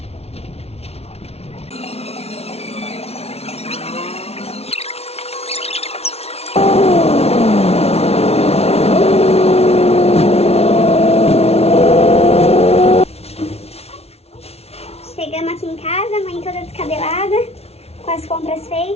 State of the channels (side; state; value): right; late; 0.30 ms